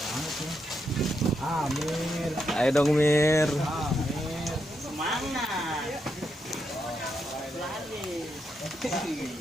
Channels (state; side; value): normal; both; correlation 0.82